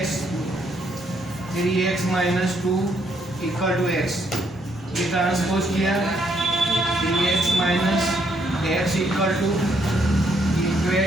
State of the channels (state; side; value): normal; both; correlation 0.72